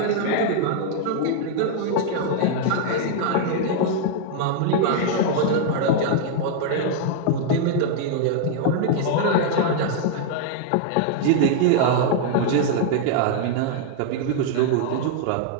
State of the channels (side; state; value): both; different; correlation -0.01